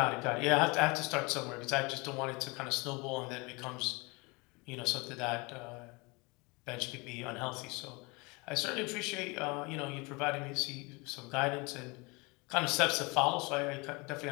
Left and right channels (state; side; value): quieter; right; 27.5 dB